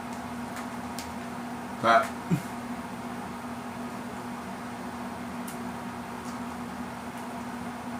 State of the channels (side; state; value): both; identical; correlation 1.00